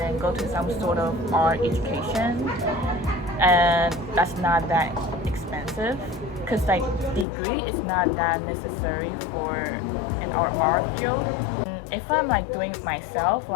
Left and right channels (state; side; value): drops out; right; at 7.2 s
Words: go to some sort of art education, and that's not that expensive because like degree is not that necessary for an art field. If I'm like doing it myself,